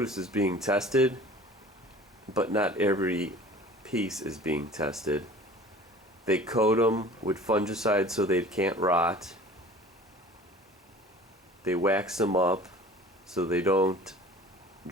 is being tested, but not every piece is being tested. They coat them with fungicides so they can't rot. They wax them up so they don't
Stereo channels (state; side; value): normal; both; correlation 0.44